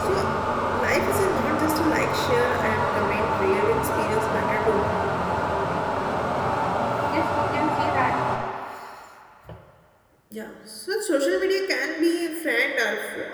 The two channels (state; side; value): identical; both; correlation 1.00